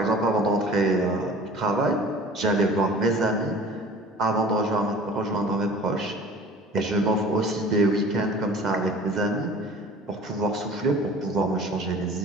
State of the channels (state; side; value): normal; both; correlation 0.44